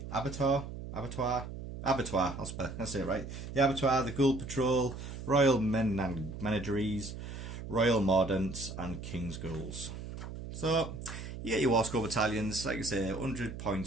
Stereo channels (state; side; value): noise; right; hum, 9 dB below the sound